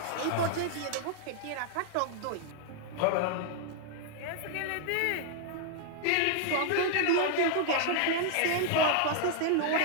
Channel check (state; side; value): different; both; correlation 0.00